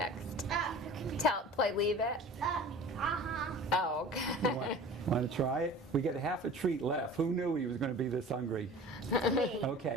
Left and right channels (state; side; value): normal; both; correlation 0.41